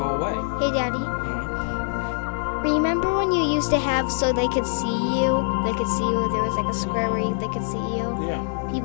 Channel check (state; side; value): silent; right; 63 dB below the other